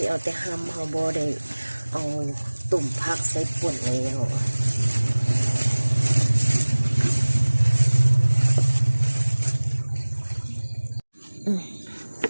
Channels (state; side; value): inverted; both; correlation -1.00